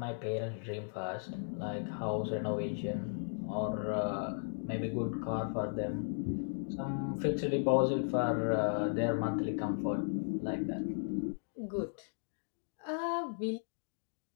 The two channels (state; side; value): silent; right; digital silence